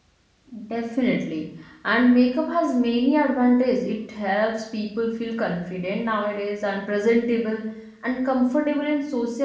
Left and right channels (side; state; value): both; identical; correlation 1.00